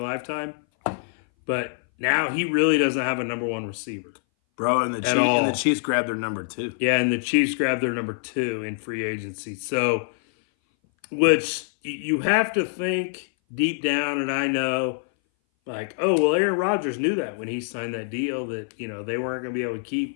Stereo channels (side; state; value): right; silent; 59 dB below the other